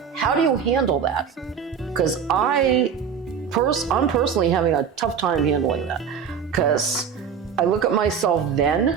how do you handle that? Because I'm personally having a tough time handling that. Because I look at myself then,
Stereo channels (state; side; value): quieter; left; 7.2 dB